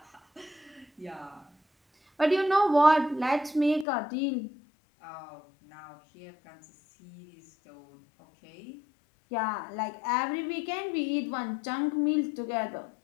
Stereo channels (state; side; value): drops out; right; at 3.9 s